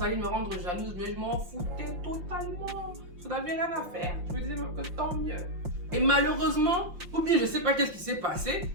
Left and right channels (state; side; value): late; left; 5.7 ms